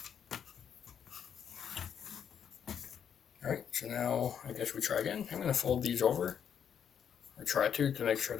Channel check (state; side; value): quieter; right; 8.2 dB